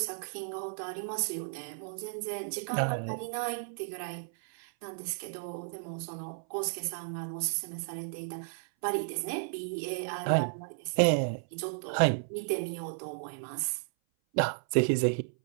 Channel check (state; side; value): silent; left; 55 dB below the other